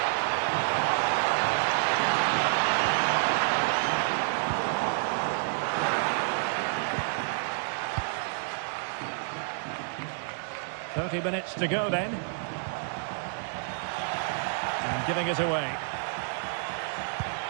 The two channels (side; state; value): left; silent; digital silence